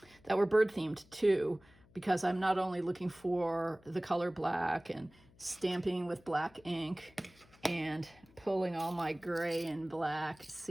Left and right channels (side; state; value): left; noise; hum, 27 dB below the sound